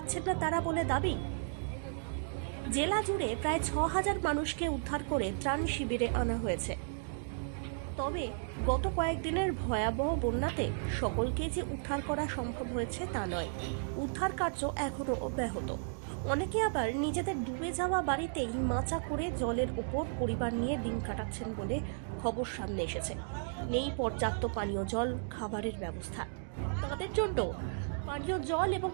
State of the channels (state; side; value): silent; left; digital silence